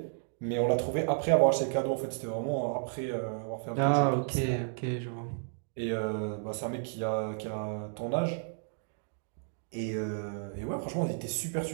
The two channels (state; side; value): silent; left; digital silence